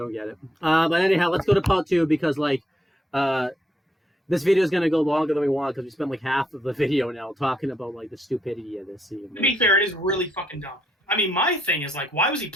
get it. But anyhow, let's go to part 2 because like. This video is going to go longer than we want because we spent like half of the video now talking about like the stupidity of this scene. To be fair, it is really fucking dumb. I mean, my thing is like, why was he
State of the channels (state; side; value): normal; both; correlation 0.75